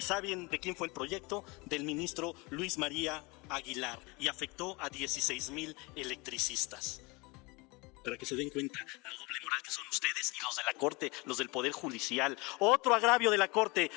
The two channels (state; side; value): quieter; right; 26.2 dB